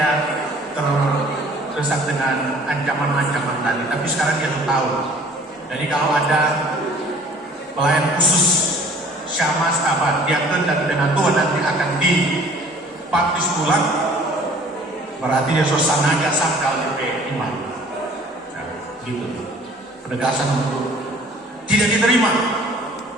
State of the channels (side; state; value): both; normal; correlation 0.52